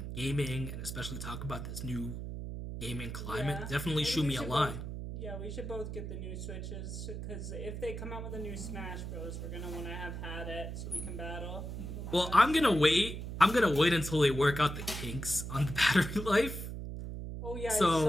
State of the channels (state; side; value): noise; right; hum, 6 dB below the sound